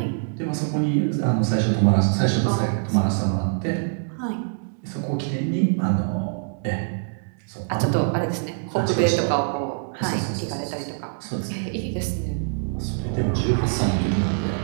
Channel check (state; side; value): silent; left; digital silence